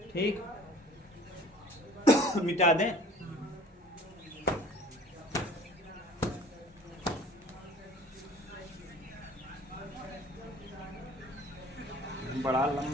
ठीक। मिटा दें? बड़ा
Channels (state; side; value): normal; both; correlation 0.48